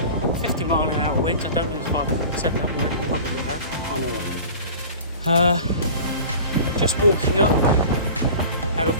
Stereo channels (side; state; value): both; inverted; correlation -0.38